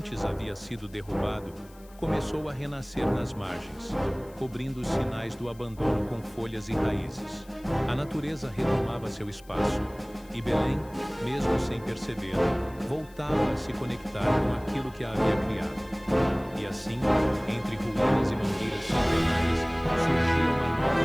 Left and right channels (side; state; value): left; noise; hiss, 26 dB below the sound